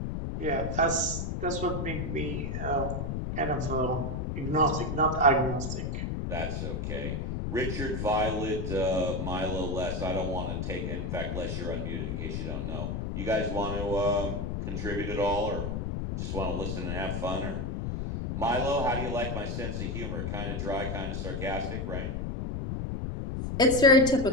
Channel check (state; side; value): noise; left; rumble, 2 dB below the sound